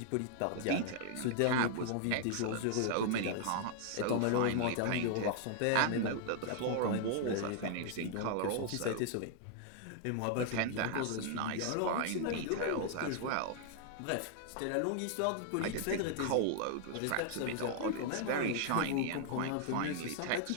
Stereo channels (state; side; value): different; both; correlation 0.00